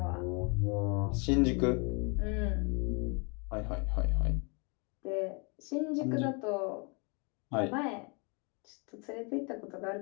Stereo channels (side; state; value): right; quieter; 33.3 dB